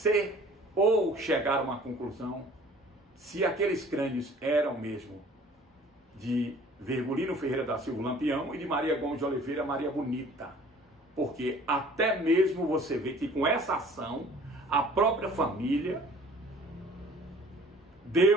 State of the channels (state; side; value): normal; both; correlation 0.50